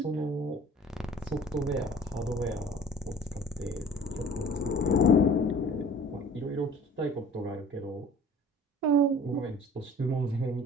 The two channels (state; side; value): normal; both; correlation 0.47